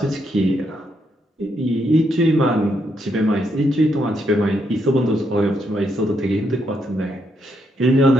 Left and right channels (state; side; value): normal; both; correlation 0.78